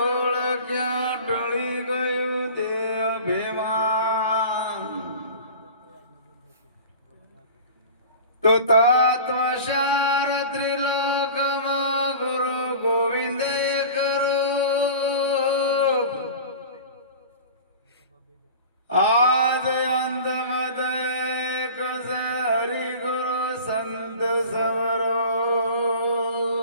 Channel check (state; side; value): inverted; both; correlation -0.38